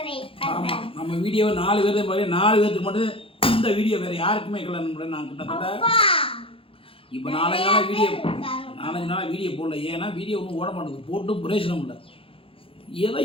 ஆமாம், நம்ம வீடியோவை 4 பேர் மாதிரி 4 பேருக்கு மட்டும் இந்த வீடியோ வேறு யாருக்குமே இருக்கல. நான் கிட்டத்தட்ட இப்போ 4 நாள் வீடியோ போடல. ஏன்னா வீடியோ ஒன்றும் ஓட மாட்டேங்குது, போட்டும் பிரயோஜனம் இல்லை. ஏதோ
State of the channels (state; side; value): late; right; 0.27 ms